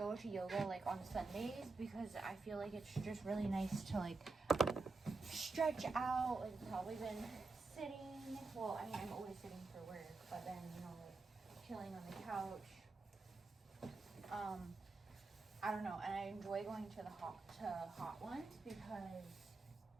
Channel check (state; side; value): quieter; left; 3.8 dB